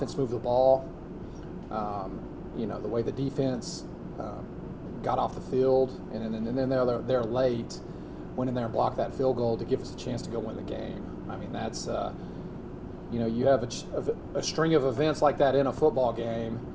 moved the ball, the way the defense got off the field, and then they're late, went in there and blocked that field goal to give us a chance to go win the game. I mean, that's, you have a string of events like that in a football game.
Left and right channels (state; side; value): identical; both; correlation 1.00